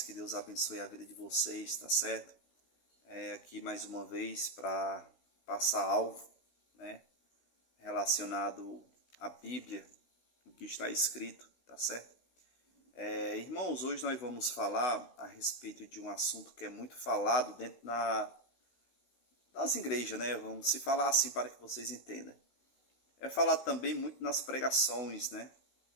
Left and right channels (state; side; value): late; right; 16 ms